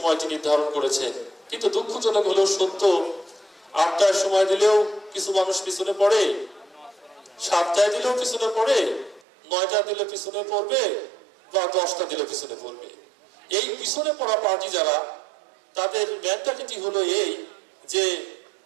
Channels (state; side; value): drops out; left; at 9.2 s